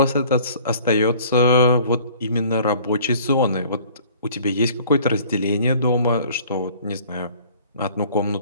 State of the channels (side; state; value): both; inverted; correlation -0.52